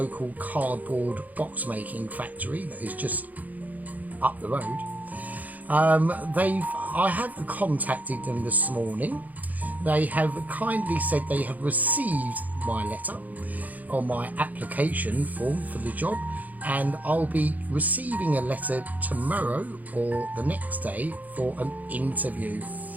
cardboard box making factory that is just up the road. I have contacted them this morning. They have kindly said they have received my letter or my application form for the job, and I'll be receiving a letter tomorrow or the next day for an interview.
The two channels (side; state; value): left; late; 0.079 ms